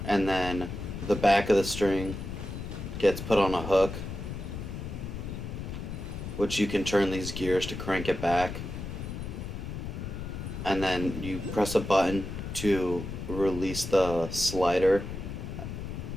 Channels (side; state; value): left; noise; rumble, 7 dB below the sound